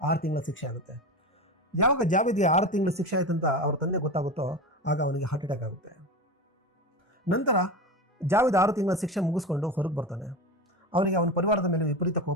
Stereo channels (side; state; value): both; normal; correlation 0.25